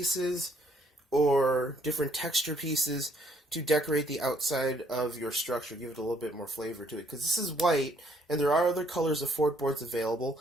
or different texture pieces to decorate the outside of your structure, give it a little bit more flavor to it. Because this is white, and there are other colors of Ford boards available,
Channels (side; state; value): both; normal; correlation 0.66